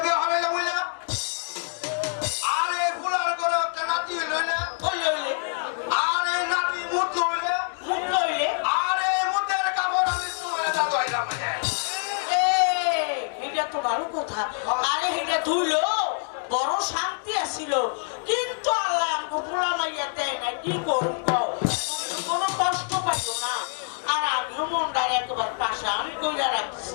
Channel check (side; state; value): right; silent; 61 dB below the other